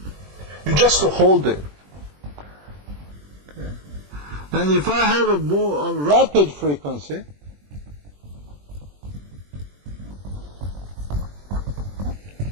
just hold it. Okay. And if I have a more rapid frequency,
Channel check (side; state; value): left; late; 21 ms